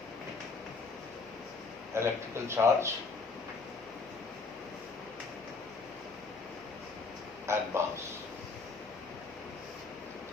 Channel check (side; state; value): right; quieter; 4.2 dB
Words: Electrical charge and mass.